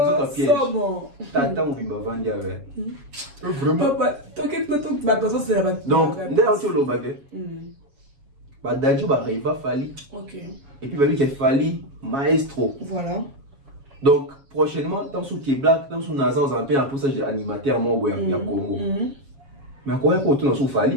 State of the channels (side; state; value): left; late; 7.2 ms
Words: pièges. Tata ou bimba vandi avec. Vraiment. Donc, d'ailleurs tu le baguette. Bah d'adjou bah riva fali. OK. Et puis bah lui qui fali maestro. Voilà. Donc prochainement tant sous qui black, tant sous Naza on appelle un poussage animateur mon boy ya Congo. Mais quoi pour tout dans sous